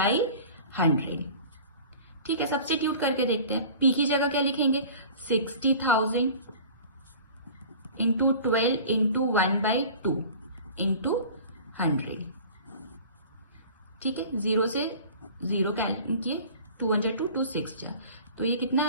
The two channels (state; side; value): inverted; both; correlation -0.42